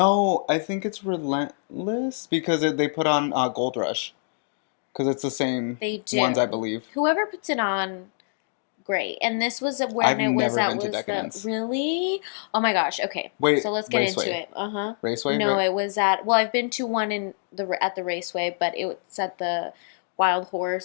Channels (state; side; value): silent; right; digital silence